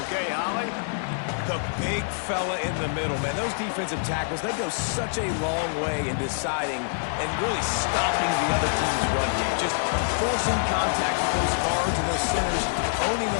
Okay, Holly. The big fella in the middle, man. Those defensive tackles, they go such a long way in deciding and really stopping the other team's run game. Just forcing contact with those guards and those centers, owning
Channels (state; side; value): silent; right; digital silence